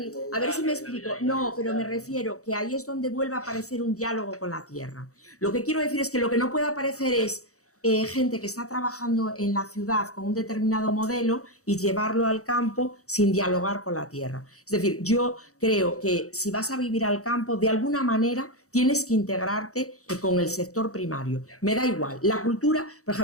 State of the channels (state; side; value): late; right; 0.65 ms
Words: A ver si me explico. No, pero me refiero que ahí es donde vuelve a aparecer un diálogo con la tierra. Lo que quiero decir es que lo que no puede aparecer es gente que está trabajando en la ciudad con un determinado modelo y llevarlo al campo sin dialogar con la tierra. Es decir, yo creo que si vas a vivir al campo, de alguna manera tienes que integrarte con el sector primario. Me da igual. La cultura, por